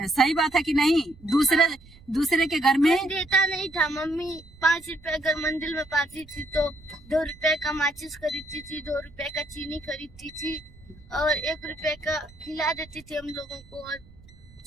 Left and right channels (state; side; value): noise; right; rumble, 23 dB below the sound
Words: सही बात है कि नहीं? दूसरे के घर में देता नहीं था। मम्मी 5 रुपए अगर मंदिर में पाती थी तो 2 रुपए का माचिस खरीदती थी, 2 रुपए का चीनी खरीदती थी और 1 रुपए का खिला देती थी हम लोगों को, और